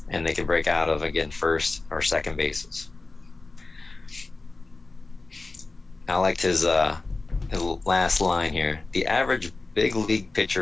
And they can break out of, again, first or second bases. I liked his last line here. The average big league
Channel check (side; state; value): right; quieter; 3.5 dB